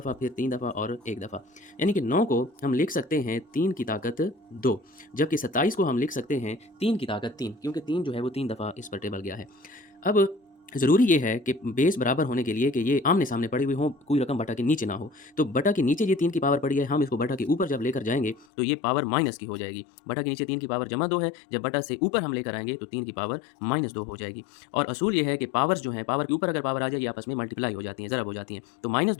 फिर 3 दफ़ा और 1 दफ़ा। यानी कि 9 को हम लिख सकते हैं 3 की ताकत 2, जबकि 27 को हम लिख सकते हैं 3 की ताकत 3, क्योंकि 3 जो है वो 3 दफ़ा इस पर टेबल गया है। अब ज़रूरी ये है कि बेस बराबर होने के लिए कि ये आमने-सामने पड़ी हुई हों, कोई रकम बटा के नीचे ना हो। तो बटा के नीचे ये 3 की पावर पड़ी है, हम इसको बटा के ऊपर जब लेकर जाएँगे तो ये पावर माइनस की हो जाएगी। बटा के नीचे 3 की पावर जमा 2 है, जब बटा से ऊपर हम लेकर आएँगे तो 3 की पावर -2 हो जाएगी। और असूल ये है कि पावर्स जो हैं, पावर के ऊपर अगर पावर आ जाए ये आपस में मल्टीप्लाई हो जाती हैं, ज़रब हो जाती हैं। तो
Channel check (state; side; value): drops out; right; at 18.4 s